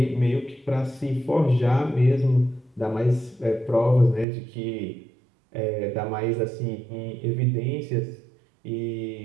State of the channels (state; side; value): drops out; left; at 4.2 s